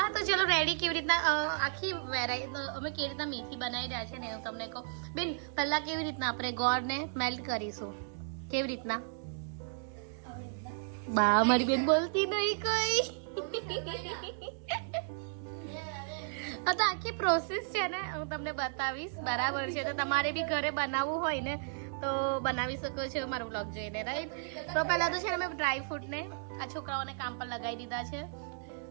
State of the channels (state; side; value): silent; left; digital silence